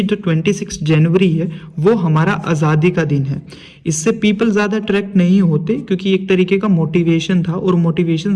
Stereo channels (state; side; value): identical; both; correlation 1.00